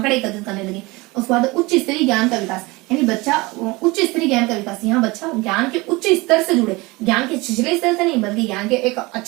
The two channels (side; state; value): left; quieter; 23.3 dB